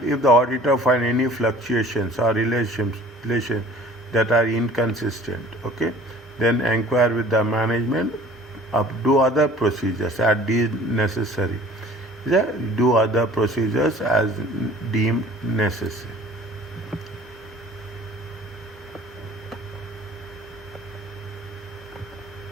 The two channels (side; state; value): both; normal; correlation 0.49